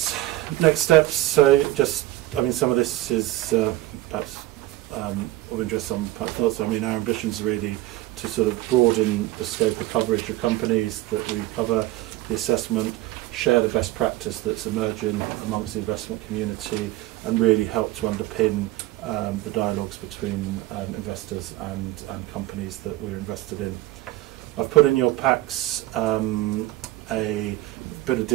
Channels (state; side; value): quieter; left; 16.9 dB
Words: steps, so just some of this is perhaps of interest, some thoughts. Our ambitions are really to sort of broaden the scope of coverage of companies that we cover, the assessment, share the best practice that's emerging amongst the investment community, and really help to underpin the dialogues between investors and companies that we're invested in. I've put in your packs a bit of